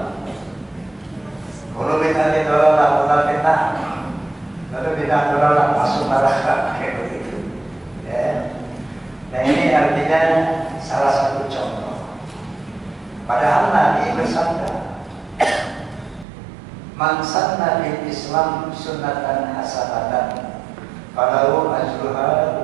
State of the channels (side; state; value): left; drops out; at 16.2 s